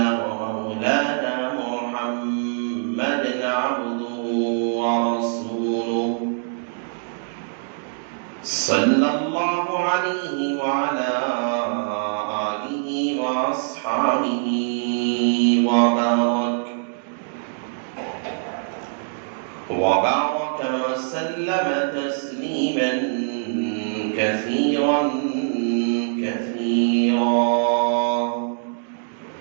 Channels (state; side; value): silent; left; digital silence